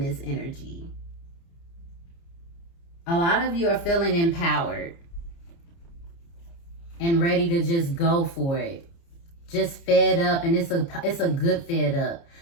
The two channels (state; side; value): late; right; 29 ms